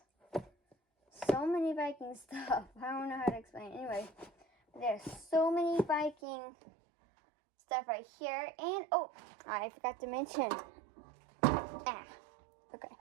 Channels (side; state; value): left; drops out; at 6.2 s